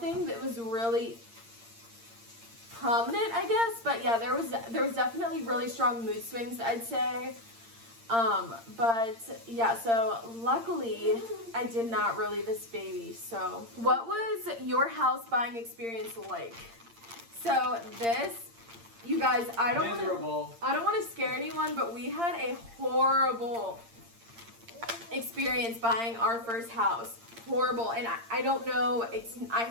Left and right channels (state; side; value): late; left; 8.7 ms